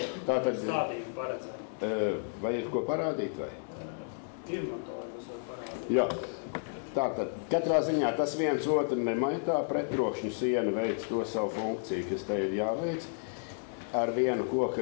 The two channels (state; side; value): silent; right; digital silence